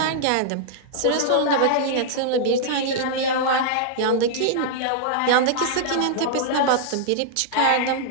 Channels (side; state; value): both; different; correlation -0.01